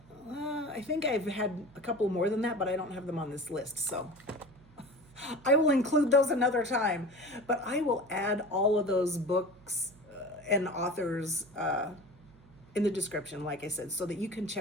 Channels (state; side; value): noise; right; hum, 25 dB below the sound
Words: I've had a couple more than that, but I don't have them on this list. So I will include those another time, but I will add all of those books and authors in the description, like I said, so that you can